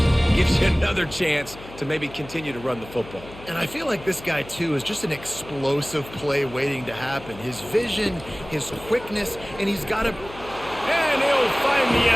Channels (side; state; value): left; noise; hum, 17 dB below the sound